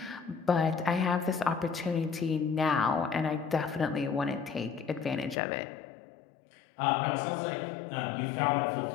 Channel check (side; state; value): right; drops out; at 5.4 s